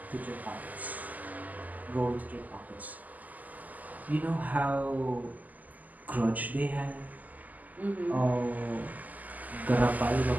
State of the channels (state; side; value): late; left; 0.080 ms